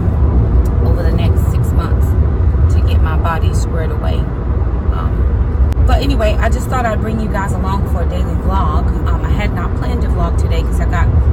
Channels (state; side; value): identical; both; correlation 1.00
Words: over the next 6 months to get my body squared away. But anyway, I just thought I'd bring you guys along for a daily vlog. I had not planned to vlog today